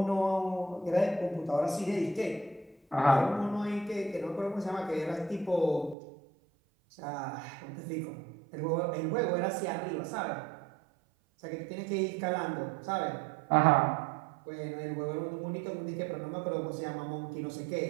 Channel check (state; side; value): drops out; left; at 6.0 s